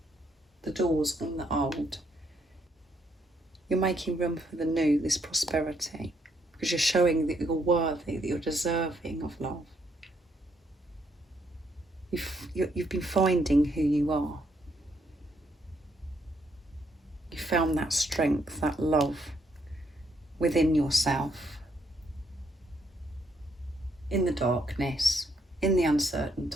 on the old, you're making room for the new, this prosperity, because you're showing that you're worthy, that you're deserving of love. You've been finding who you are. You found that strength, that love within yourself, in the darkness, in the uncertain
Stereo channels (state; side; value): normal; both; correlation 0.73